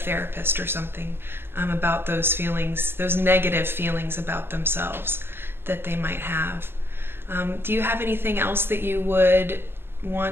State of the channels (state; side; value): late; left; 0.11 ms